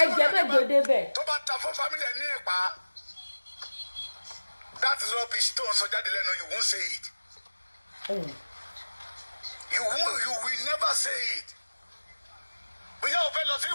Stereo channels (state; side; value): inverted; both; correlation -1.00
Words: jẹ́ mẹ́jọ débẹ̀. tó bá ta fún family ẹ̀ ní ìpa that is rubbish tó ń sọ jáde lẹ́nu you won't say it. You will never say it. bóyá o fẹ́ lọ sí